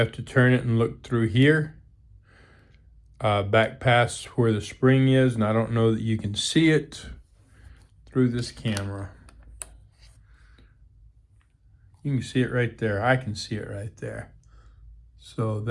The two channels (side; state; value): both; identical; correlation 1.00